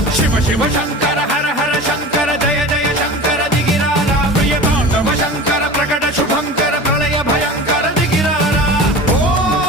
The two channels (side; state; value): both; normal; correlation 0.35